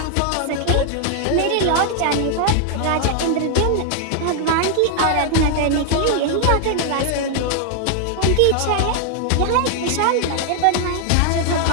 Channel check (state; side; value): different; both; correlation 0.00